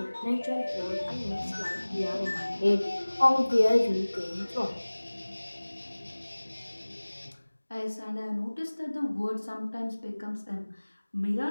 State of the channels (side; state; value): both; inverted; correlation -1.00